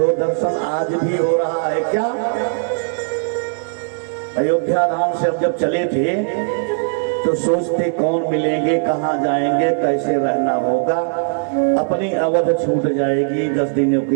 दर्शन आज भी हो रहा है। क्या अयोध्या धाम से हम जब चले थे तो सोचते कौन मिलेंगे, कहाँ जाएंगे, कैसे रहना होगा, अपनी अवध छूट जाएगी 10 दिनों के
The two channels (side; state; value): left; silent; digital silence